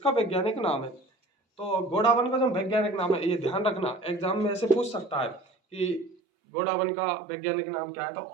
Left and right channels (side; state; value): left; drops out; at 6.2 s